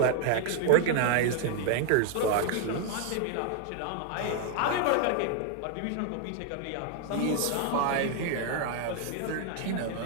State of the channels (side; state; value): both; different; correlation 0.00